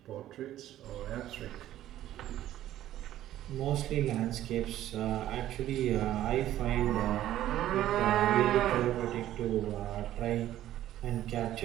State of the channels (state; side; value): quieter; left; 13.1 dB